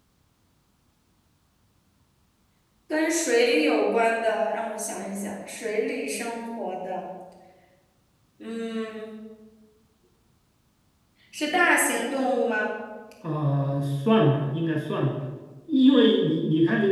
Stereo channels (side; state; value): both; identical; correlation 1.00